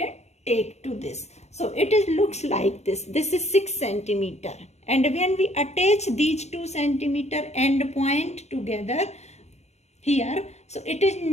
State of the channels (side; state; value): right; late; 0.32 ms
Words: take to this. So it is looks like this. This is 6 centimeter. And when we attach these 2 centimeter end point together here, so it is